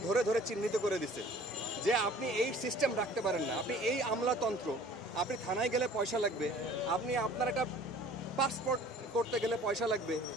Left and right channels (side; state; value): both; normal; correlation 0.49